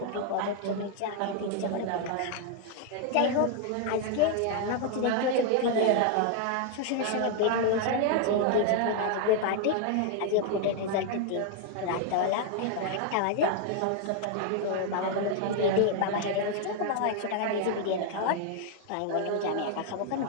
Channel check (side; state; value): both; different; correlation 0.00